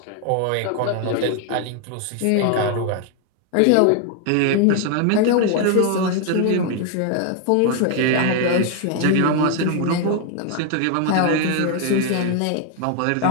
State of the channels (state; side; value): different; both; correlation 0.00